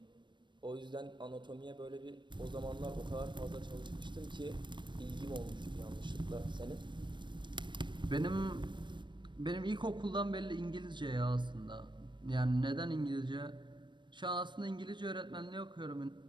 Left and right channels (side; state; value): left; late; 0.22 ms